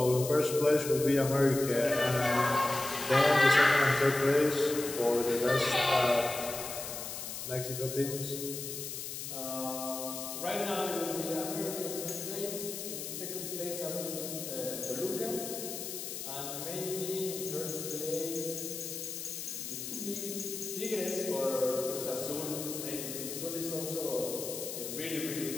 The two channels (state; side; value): noise; left; hiss, 7 dB below the sound